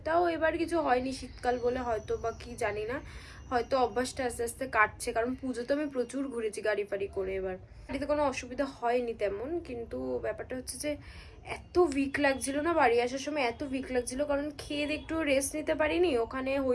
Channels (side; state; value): both; identical; correlation 1.00